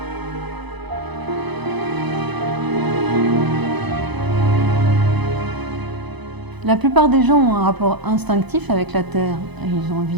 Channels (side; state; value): left; late; 0.99 ms